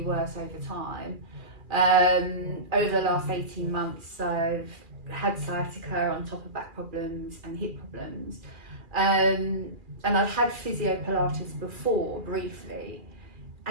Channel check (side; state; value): left; late; 2.4 ms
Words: worse over time. Over the last 18 months I've had sciatica on top of back problems and hip problems, and I've had Physiotherapy before briefly,